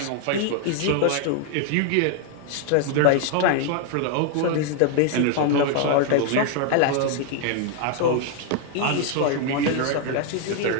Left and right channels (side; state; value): both; different; correlation 0.00